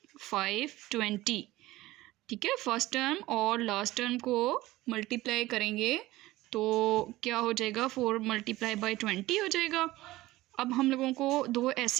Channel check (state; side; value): quieter; left; 17.8 dB